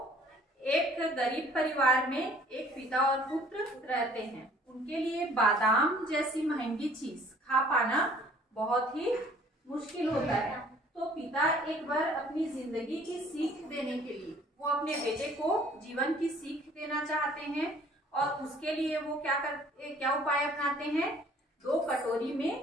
एक गरीब परिवार में एक पिता और पुत्र रहते हैं। उनके लिए बादाम जैसी महंगी चीज खा पाना बहुत ही मुश्किल होता है। तो पिता एक बार अपनी जिंदगी की सीख देने के लिए वो अपने बेटे को जीवन की सीख देना चाहते हैं और उसके लिए वो क्या उपाय अपनाते हैं। 2 कटोरी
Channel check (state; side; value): normal; both; correlation 0.55